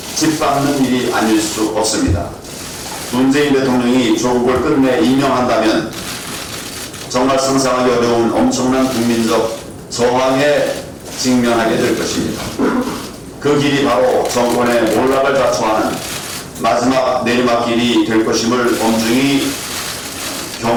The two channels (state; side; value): identical; both; correlation 1.00